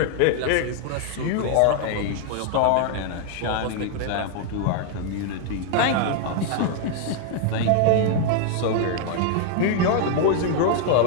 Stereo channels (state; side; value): different; both; correlation 0.00